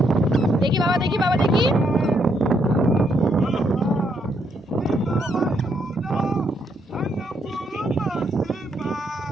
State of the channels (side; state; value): both; normal; correlation 0.75